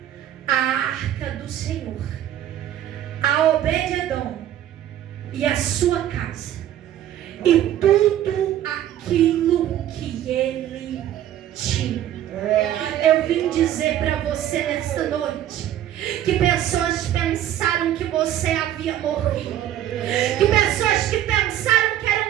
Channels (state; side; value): quieter; left; 11.7 dB